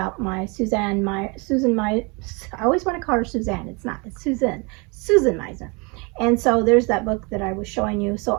my Susan, I always want to call her Suzanne. It's not, it's Susan Meisner. And so there's that book that I was showing you. So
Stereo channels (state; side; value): quieter; left; 29.9 dB